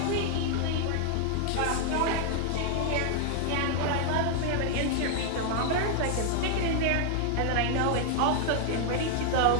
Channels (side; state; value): both; different; correlation 0.00